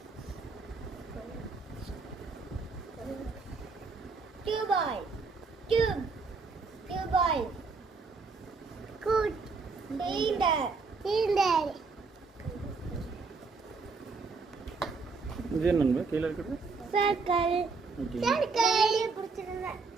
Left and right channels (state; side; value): quieter; left; 4.4 dB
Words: டியூபாய், டியூபாய், கூட், சிலிண்டர். இது என்னங்க கீழே இருக்குது? சர்க்கிள். பிடிச்சிருந்தேன்.